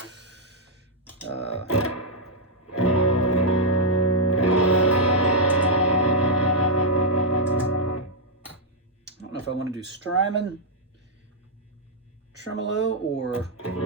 I don't know if I want to do Strymon tremolo or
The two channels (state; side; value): normal; both; correlation -0.05